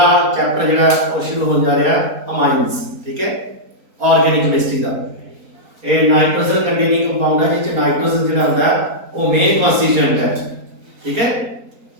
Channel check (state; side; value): late; left; 4.2 ms